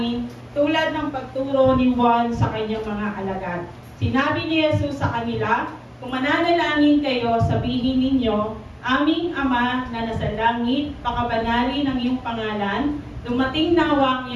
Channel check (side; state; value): both; identical; correlation 1.00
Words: tulad ng pagturo ni Juan sa kanyang mga alagad. Sinabi ni Jesus sa kanila, kung mananalangin kayo, sabihin ninyo, aming Ama na nasa langit, pakabanalin ang iyong pangalan, dumating nawa ang